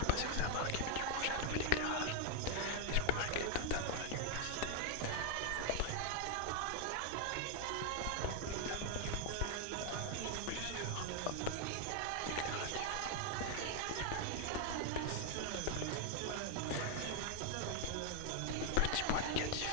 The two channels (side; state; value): both; different; correlation 0.00